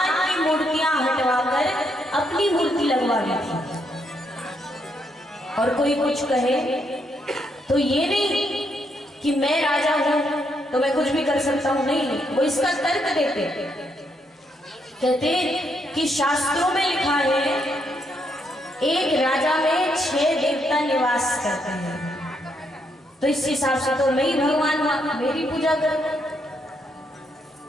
की मूर्तियां हटवाकर अपनी मूर्ति लगवा दी थी। और कोई कुछ कहे तो ये नहीं कि मैं राजा हूं तो मैं कुछ भी कर सकता हूं, नहीं, वो इसका तर्क देते। कहते कि शास्त्रों में लिखा है एक राजा में 6 देवता निवास करते हैं, तो इस हिसाब से तो मैं ही भगवान हूं, मेरी पूजा कर।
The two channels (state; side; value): normal; both; correlation 0.76